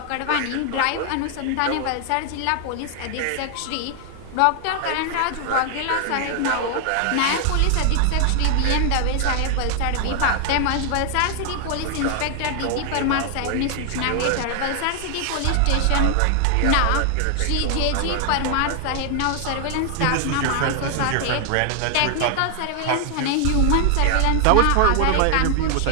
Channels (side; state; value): both; different; correlation 0.00